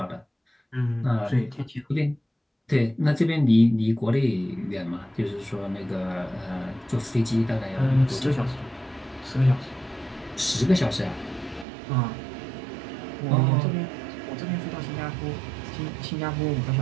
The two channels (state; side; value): drops out; left; at 11.7 s